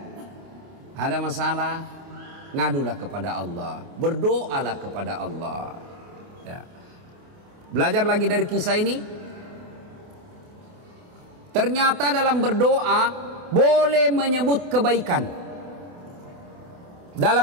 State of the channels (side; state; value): left; late; 28 ms